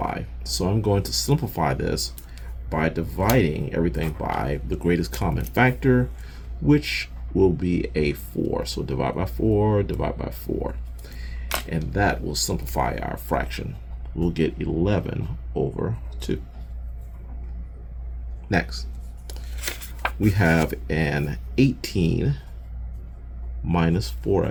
So I'm going to simplify this by dividing everything by the greatest common factor, which will be a 4. So divide by 4, divide by 4. And that will simplify our fraction. We'll get 11 over 2. Next, we have an 18 minus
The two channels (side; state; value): both; identical; correlation 1.00